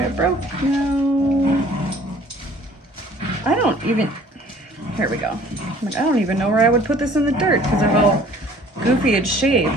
it broke. No, I don't even, here we go. I'm like, I don't even know where I would put this in the dirt because of how goofy it's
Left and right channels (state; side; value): normal; both; correlation 0.53